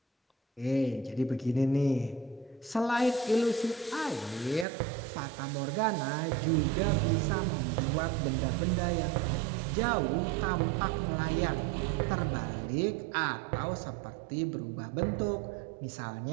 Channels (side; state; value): left; drops out; at 4.7 s